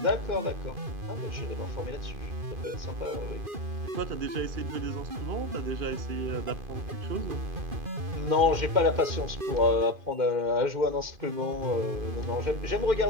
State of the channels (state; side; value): late; left; 2.5 ms